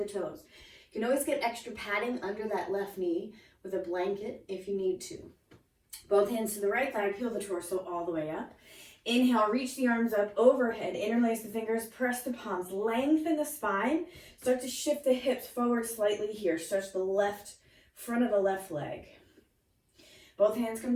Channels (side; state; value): both; identical; correlation 1.00